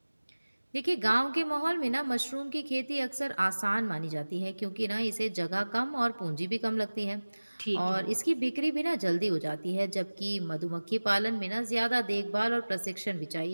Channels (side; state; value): both; inverted; correlation -1.00